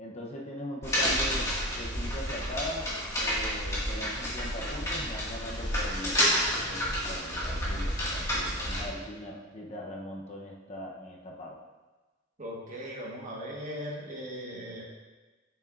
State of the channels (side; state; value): both; normal; correlation 0.27